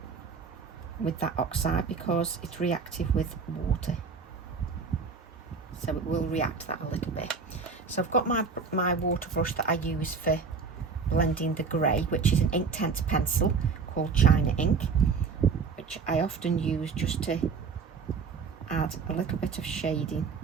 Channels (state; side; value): quieter; left; 5.2 dB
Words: with that oxide because it's reactive with water, so it will react that a little bit. So I've got my water brush that I use for blending the grey, which is an Inktense pencil called China Ink, which I often use just to add a little bit of shading